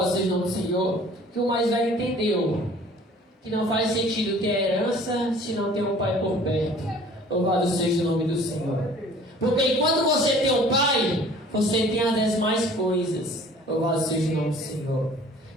seja o nome do Senhor, que o mais velho entendeu que não faz sentido ter herança se não tem um pai por perto. Louvado seja o nome do Senhor. Porque enquanto você tem um pai, você tem as demais coisas. Louvado seja o nome do Senhor.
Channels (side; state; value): both; normal; correlation 0.50